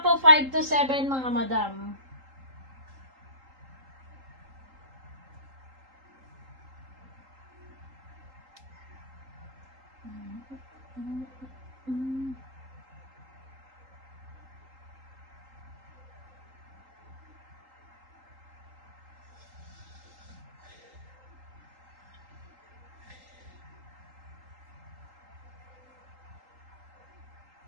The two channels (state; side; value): late; left; 3.8 ms